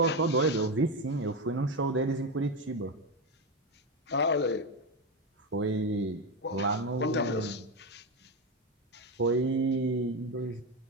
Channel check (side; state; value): both; normal; correlation 0.13